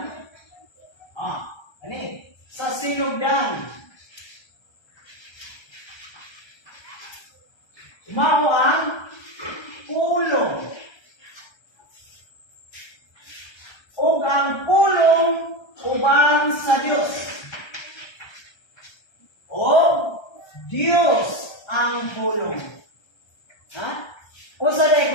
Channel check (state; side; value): late; right; 1.3 ms